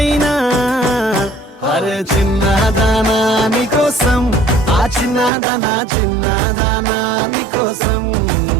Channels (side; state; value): left; drops out; at 5.3 s